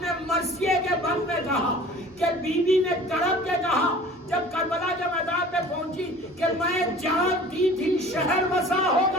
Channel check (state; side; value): normal; both; correlation 0.45